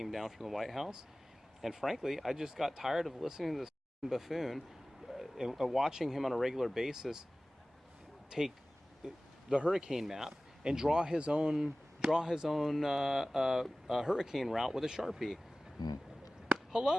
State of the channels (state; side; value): normal; both; correlation 0.97